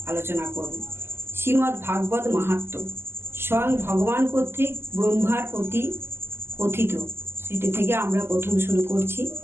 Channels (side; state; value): left; late; 0.12 ms